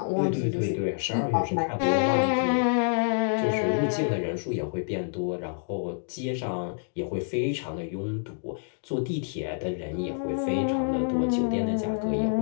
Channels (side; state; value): right; silent; digital silence